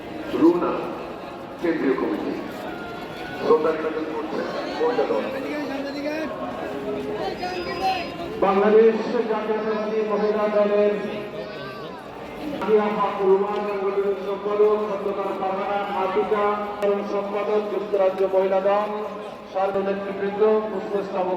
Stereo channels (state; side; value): identical; both; correlation 1.00